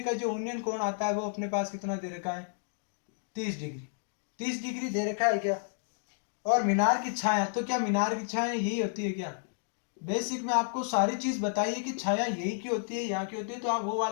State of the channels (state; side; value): silent; right; digital silence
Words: जो उन्नयन कोण आता है वो अपने पास कितना दे रखा है, 30 डिग्री। 30 डिग्री दे रखा है क्या। और मीनार की छाया, तो क्या मीनार की छाया यही होती है क्या। बेसिक में आपको सारी चीज बताइए कि छाया यही की होती है, यहाँ की होती है, तो आप वो